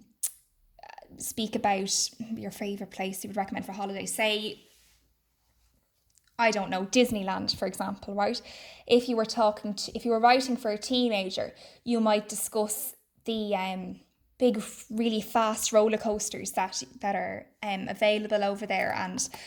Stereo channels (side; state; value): both; identical; correlation 1.00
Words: speak about your favourite place you would recommend for a holiday, say, I don't know, Disneyland, for example, right? If you were writing for a teenager, you might discuss the big, really fast roller coasters that are available over there, and